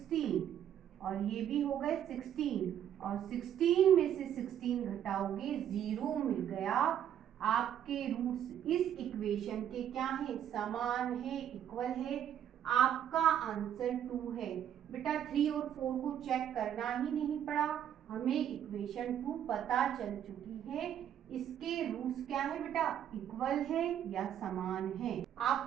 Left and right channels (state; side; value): quieter; left; 10.0 dB